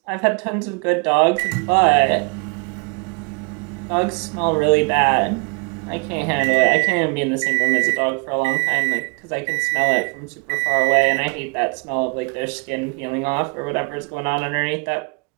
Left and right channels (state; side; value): quieter; left; 32.7 dB